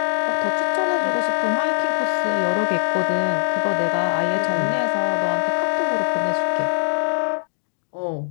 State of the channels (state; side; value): silent; right; 63 dB below the other